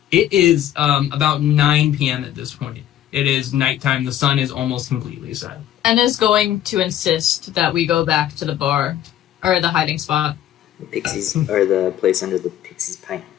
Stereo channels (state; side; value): quieter; right; 11.7 dB